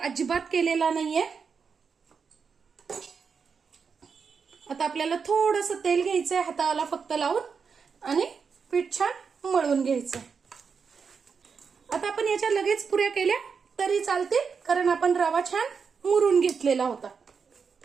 केलेला नाहीये. आता आपल्याला थोडंसं तेल घ्यायचंय हाताला फक्त लावून आणि पीठ छान मळून घ्यायचंय. आता आपण याच्या लगेच पुऱ्या केल्या तरी चालतील, कारण आपण रवा छान मुरून घेतलेला होता.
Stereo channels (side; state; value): left; quieter; 5.8 dB